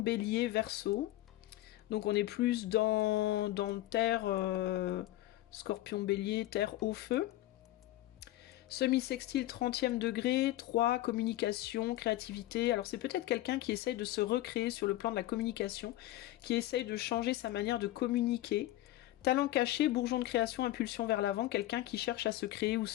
Verseau, donc on est plus dans Terre, Scorpion, Bélier, Terre, eau, feu. Semi-sextile, 30e degré, 3, communication, créativité. Alors c'est peut-être quelqu'un qui essaye de se recréer sur le plan de la communication, qui essaye de changer sa manière de communiquer. Talent caché, bourgeon de création, impulsion vers l'avant, quelqu'un qui cherche à se créer ou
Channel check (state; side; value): quieter; right; 15.8 dB